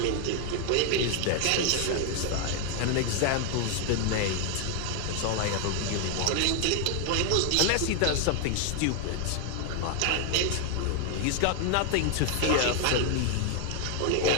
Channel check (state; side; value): different; both; correlation 0.00